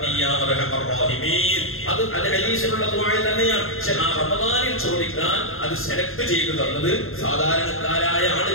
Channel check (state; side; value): late; right; 0.61 ms